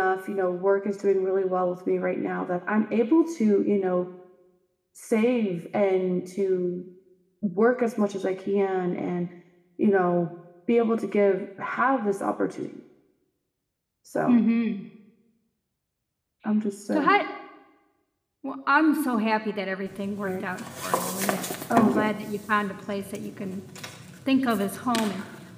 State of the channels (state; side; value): identical; both; correlation 1.00